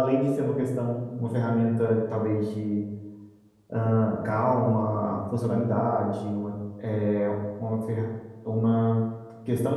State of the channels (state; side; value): identical; both; correlation 1.00